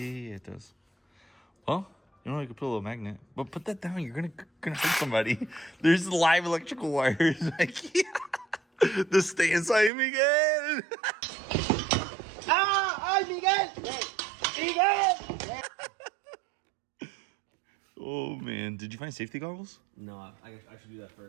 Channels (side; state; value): left; drops out; at 9.9 s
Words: it does. Well, you know, you could put a little magnet. But put that down. You're gonna hurt somebody. There's live electrical wires. Like, the stay inside Miguel. ¡Ay, Miguel! ¡Miguel! Oh, man. Did you find safety goggles? No, I should do that